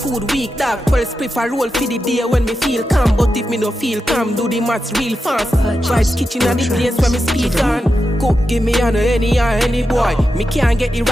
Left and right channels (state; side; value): normal; both; correlation 0.89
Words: week, dog. 12 spliff a roll for the day when me feel calm. But if me don't feel calm, do the maths real fast. Vibes kitchen and the place where me speak on. Cook, give me on any boy. Me can't get the